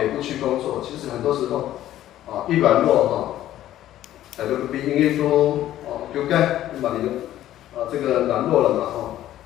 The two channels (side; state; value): right; quieter; 13.1 dB